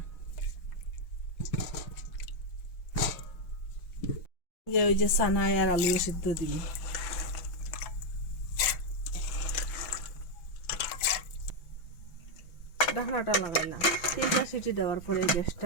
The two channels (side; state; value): right; late; 5.9 ms